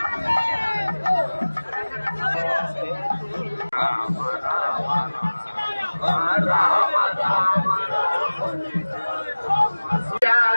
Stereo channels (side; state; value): both; inverted; correlation -1.00